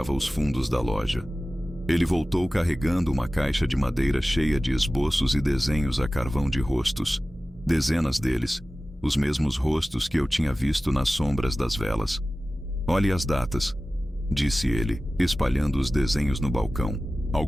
os fundos da loja. Ele voltou carregando uma caixa de madeira cheia de esboços e desenhos a carvão de rostos. Dezenas deles, os mesmos rostos que eu tinha visto nas sombras das velas. "Olhe as datas", disse ele, espalhando os desenhos no balcão.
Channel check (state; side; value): normal; both; correlation 0.96